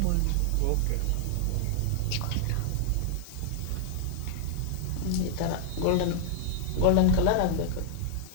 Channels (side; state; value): both; different; correlation -0.01